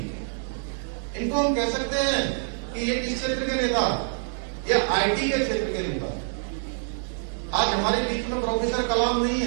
इनको हम कह सकते हैं कि ये किस क्षेत्र के नेता? ये आईटी के क्षेत्र के नेता। आज हमारे बीच में प्रोफेसर कलाम नहीं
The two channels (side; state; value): left; silent; 61 dB below the other